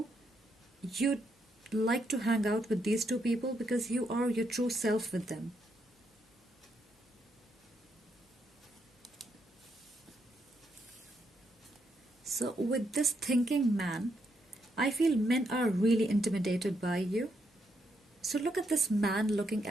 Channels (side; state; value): both; normal; correlation 0.78